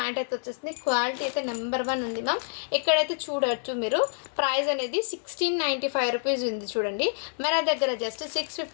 అయితే వచ్చేస్తుంది. క్వాలిటీ అయితే నెంబర్ 1 ఉంది మ్యామ్. ఇక్కడైతే చూడవచ్చు మీరు. ప్రైస్ అనేది 1695 రూపీస్ ఉంది చూడండి. మన దగ్గర జస్ట్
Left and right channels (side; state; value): right; silent; 60 dB below the other